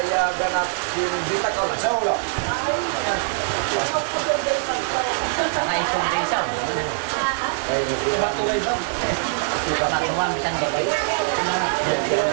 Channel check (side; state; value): left; silent; digital silence